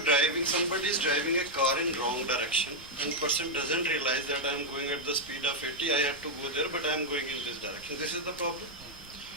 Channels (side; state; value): both; normal; correlation -0.01